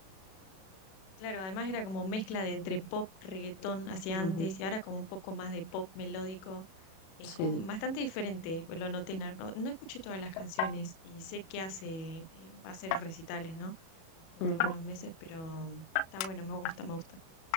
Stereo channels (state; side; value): late; right; 36 ms